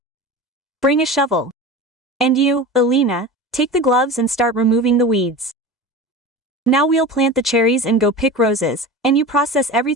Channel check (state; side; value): normal; both; correlation 0.30